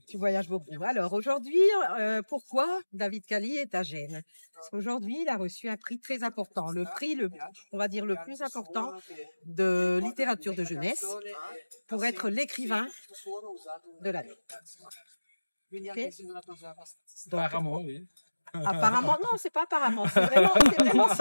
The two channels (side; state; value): both; inverted; correlation -1.00